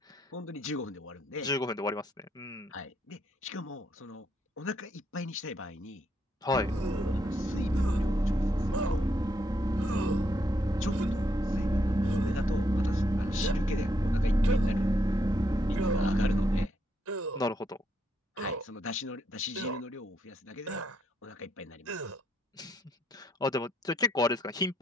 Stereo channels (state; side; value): normal; both; correlation 0.75